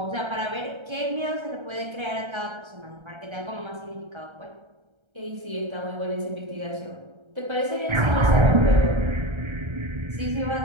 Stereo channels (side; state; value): left; late; 1.3 ms